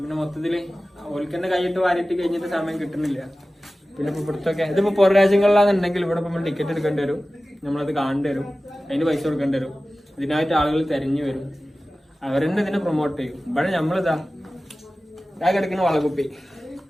പിന്നെ മൊത്തത്തില് ഓൽക്കന്നെ കൈയിട്ട് വാരിയിട്ട് കഴിഞ്ഞിട്ട് സമയം കിട്ടുന്നില്ല. പിന്നെ ഇപ്പൊ ഇവിടുത്തൊക്കെ ഇതിപ്പോ പുറം രാജ്യങ്ങളിലാണെന്നുണ്ടെങ്കിൽ ഇവിടെ നമ്മൾ ടിക്കറ്റ് എടുക്കേണ്ടി വരും, നമ്മളത് കാണേണ്ടി വരും, അതിന് പൈസ കൊടുക്കേണ്ടി വരും. ഇതിനായിട്ട് ആളുകൾ തെരഞ്ഞു വരും, അവരെന്നെ ഇതിനെ പ്രൊമോട്ട് ചെയ്യും. ഇവിടെ നമ്മളിതാ കിടക്കുന്ന വളകുപ്പി,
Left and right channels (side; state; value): both; normal; correlation 0.96